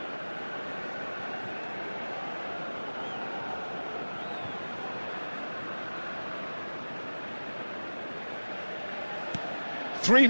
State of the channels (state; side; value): inverted; both; correlation -1.00